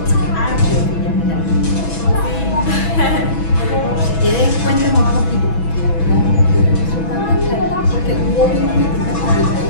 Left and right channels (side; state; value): right; late; 6.1 ms